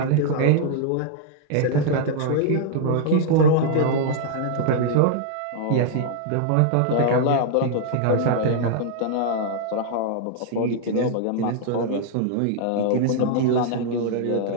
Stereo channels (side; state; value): both; different; correlation -0.01